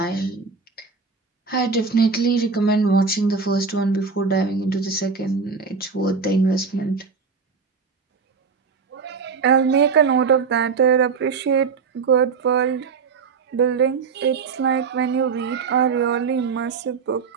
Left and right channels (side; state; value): left; quieter; 5.2 dB